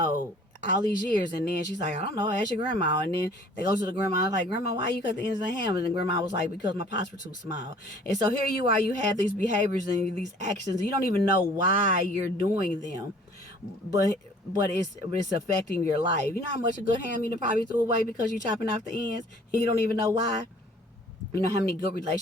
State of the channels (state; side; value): normal; both; correlation 0.53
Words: All these years. And then she's like, I don't know, ask your grandma. And then they go to the grandma, like, Grandma, why you cut the ends of the ham? And the grandma was like, because my pots were too small. And so here you are, you have these behaviors and these actions. You don't even know why you're doing them. But it's affecting your life. You know how much a good ham you probably threw away because you're chopping off the ends? And you don't even know why? You know how many good